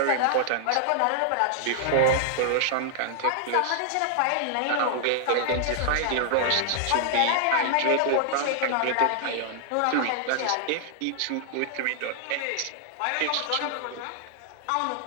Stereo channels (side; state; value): both; different; correlation 0.00